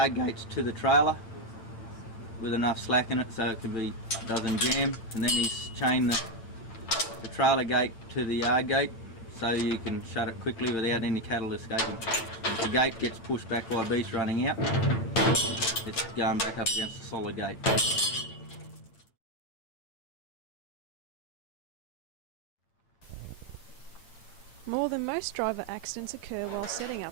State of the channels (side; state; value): right; late; 8.9 ms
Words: gates to the trailer with enough slack in it so it doesn't jam, and then he's chained the trailer gate to the yard gate so you can shut it quickly without any cattle escaping. If the gate gets pushed back by beast running out, it's going back up against the solid gate. More than most driver accidents occur while setting